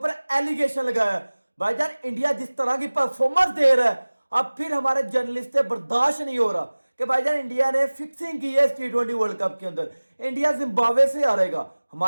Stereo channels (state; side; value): inverted; both; correlation -1.00